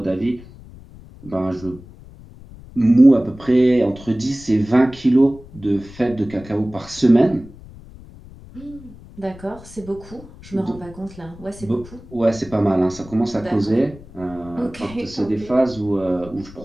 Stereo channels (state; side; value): noise; left; rumble, 19 dB below the sound